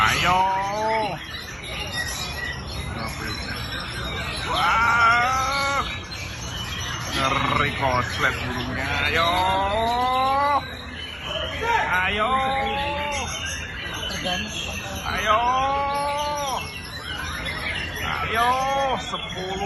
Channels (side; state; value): both; identical; correlation 1.00